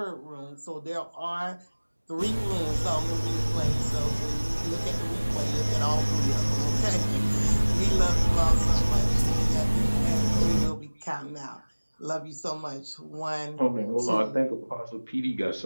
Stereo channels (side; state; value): both; inverted; correlation -1.00